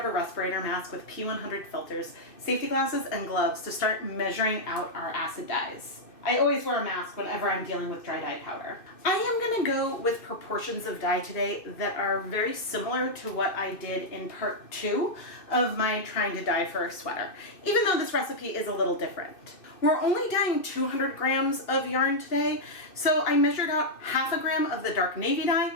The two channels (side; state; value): right; late; 2.6 ms